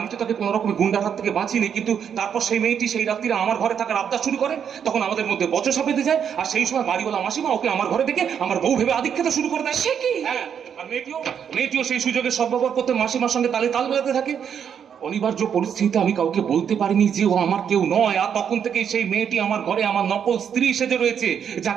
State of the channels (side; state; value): left; quieter; 8.0 dB